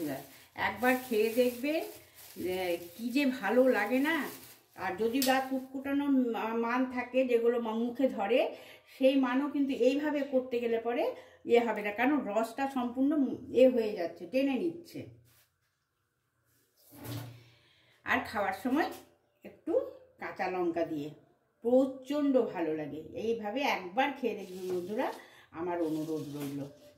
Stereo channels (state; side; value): identical; both; correlation 1.00